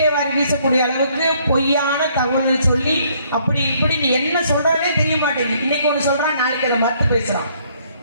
வாரி வீசக்கூடிய அளவுக்கு பொய்யான தகவல்களை சொல்லி அப்படி இப்படி நீ என்ன சொல்றனே தெரிய மாட்டேங்குது. இன்னைக்கு ஒண்ணு சொல்றான், நாளைக்கு அதை மறுத்து பேசுறான்.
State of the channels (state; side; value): inverted; both; correlation -0.65